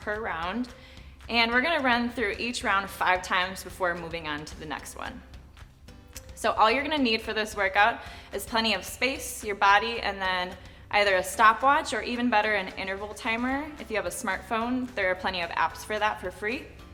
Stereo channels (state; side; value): identical; both; correlation 1.00